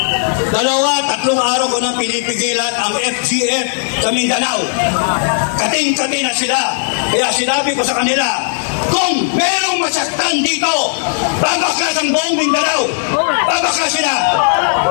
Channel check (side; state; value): right; silent; digital silence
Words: 2-3 araw ko nang pinipigilan ang FGF sa Mindanao. Kating-kati na sila. Kaya sinabi ko sa kanila, kung merong masaktan dito, babakas ang buong Mindanao. Babakas sila.